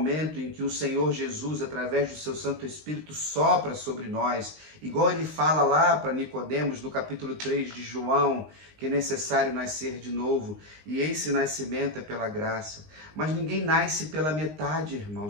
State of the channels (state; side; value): late; left; 19 ms